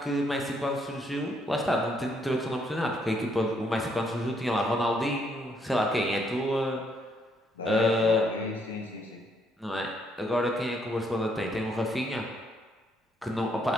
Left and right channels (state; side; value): normal; both; correlation 0.71